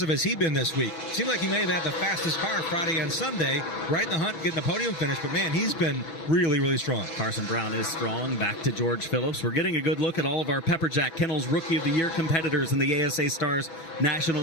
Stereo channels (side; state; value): right; late; 6.1 ms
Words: has he been this week? Seemed like he may have had the fastest car Friday and Sunday, right in the hunt, getting a podium finish, but man, he's been really, really strong. Carson Brown is strong. Back to George Phillips. We're getting a good look at all of our Pepperjack Kennels Rookie of the Year competitors in the ASA Stars